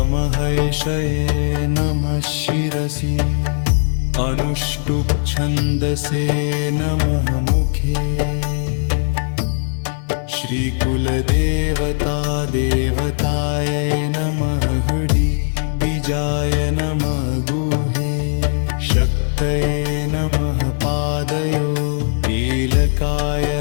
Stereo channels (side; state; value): right; silent; digital silence